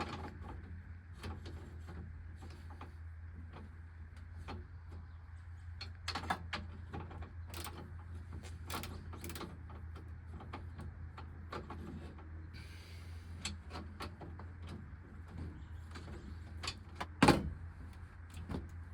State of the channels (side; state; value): both; identical; correlation 1.00